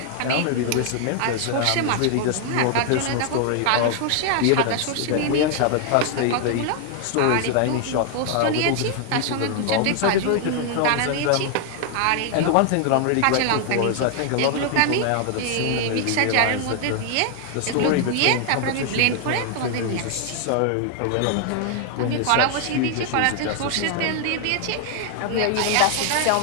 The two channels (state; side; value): different; both; correlation 0.00